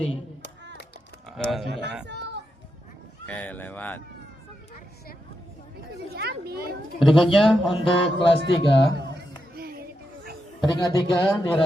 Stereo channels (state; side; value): normal; both; correlation 0.85